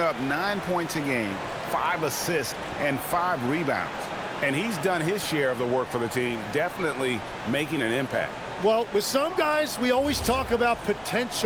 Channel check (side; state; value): both; identical; correlation 1.00